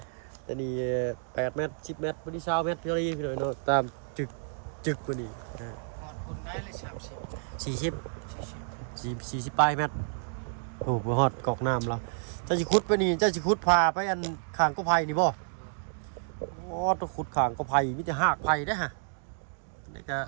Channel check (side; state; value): left; silent; digital silence